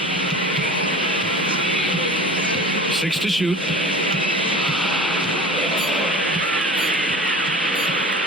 Six to shoot.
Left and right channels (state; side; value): normal; both; correlation 0.38